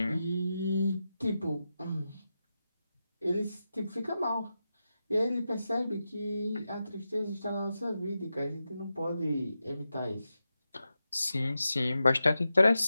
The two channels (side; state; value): both; inverted; correlation -0.90